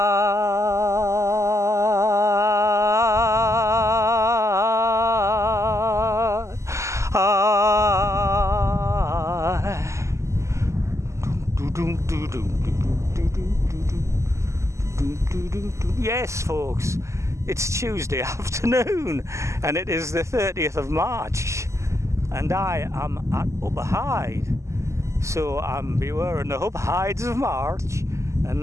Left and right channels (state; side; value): late; left; 0.14 ms